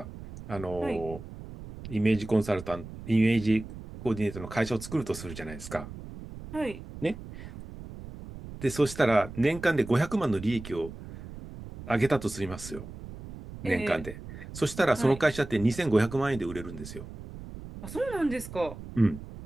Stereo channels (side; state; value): right; noise; rumble, 13 dB below the sound